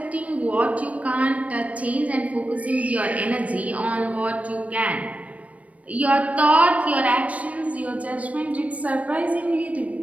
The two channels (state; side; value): late; left; 0.067 ms